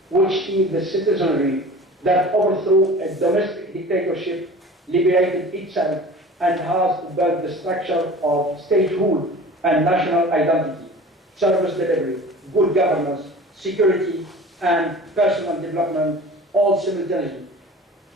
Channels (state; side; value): normal; both; correlation 0.40